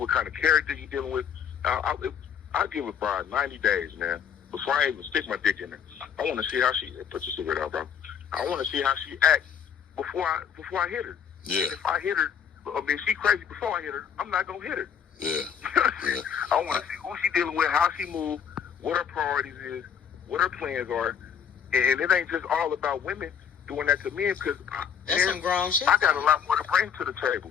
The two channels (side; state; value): right; quieter; 7.9 dB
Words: kind of character you're dealing with. I'll give a bride 90 days, man, before I even stick my dick in her. I want to see how she put your cigarette out, bro. I want to see how she acts before I hit her. Yeah. If I hit her, if she crazy before I hit her, I'm not gonna hit her. Yeah. I want to see who she dealing with, how she moves, what her priorities is, what her plans are, And it ain't just all about women doing that to men, because that's some grown shit. I got a lot more to bring to the table